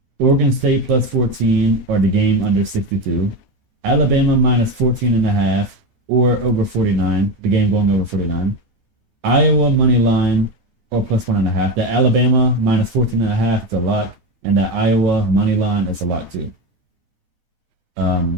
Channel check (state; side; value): late; left; 12 ms